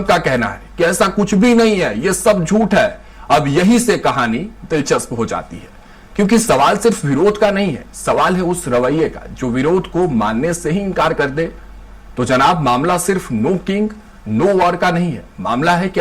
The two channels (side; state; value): both; identical; correlation 1.00